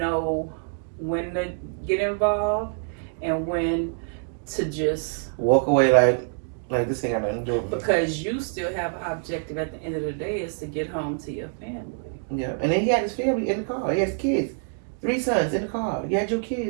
when to get involved and when to just walk away like this ain't got nothing to do with me. Because you still have an objective at the end of the day is to get home to your family. Yeah, and then he had his family in the car. He has kids, 3 sons in the car. You had your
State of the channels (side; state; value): left; silent; 61 dB below the other